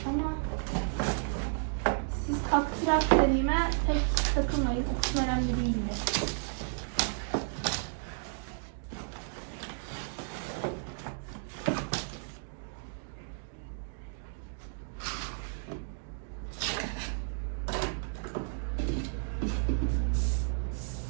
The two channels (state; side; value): silent; left; digital silence